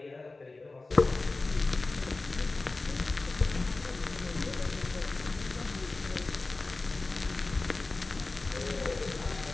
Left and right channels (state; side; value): quieter; right; 3.4 dB